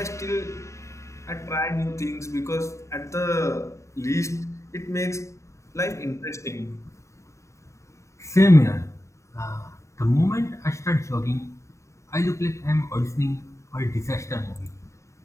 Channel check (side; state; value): right; late; 0.14 ms